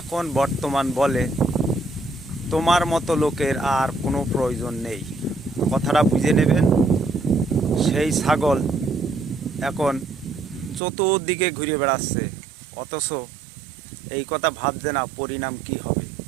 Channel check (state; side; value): drops out; left; at 10.8 s